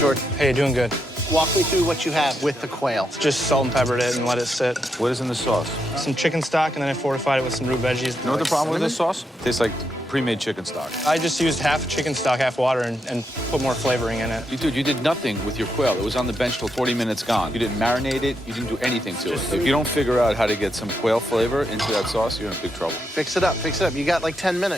Hey, doing good. walk me through what you have with the quail. Just salt and peppered it and let it sit. What is in the sauce? Some chicken stock, and then I fortified it with some root veggies. You know what the problem with this sauce? Tastes like pre-made chicken stock. I just used half chicken stock, half water, and put more flavoring in it. Dude, you did nothing with your quail. It was on the bench till 40 minutes gone. You didn't marinate it. You didn't do anything to it. If you don't figure out how to get some quail flavor into that sauce, you're in big trouble. Fix it up, fix it up. You got like 10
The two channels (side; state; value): both; normal; correlation 0.82